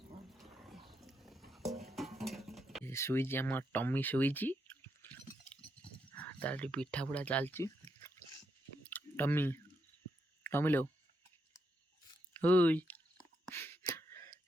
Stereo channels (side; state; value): both; normal; correlation 0.80